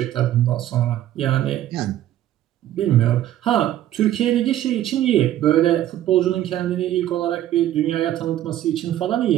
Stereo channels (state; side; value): quieter; left; 12.7 dB